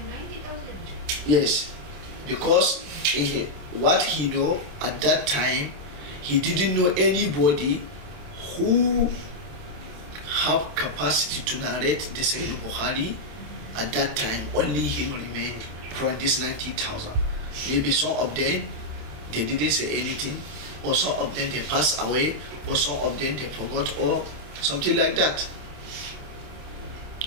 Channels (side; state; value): left; late; 27 ms